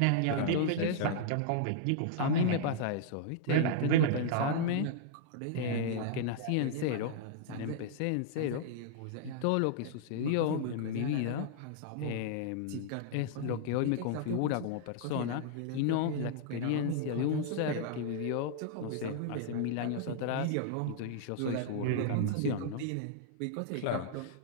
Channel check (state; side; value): different; both; correlation -0.01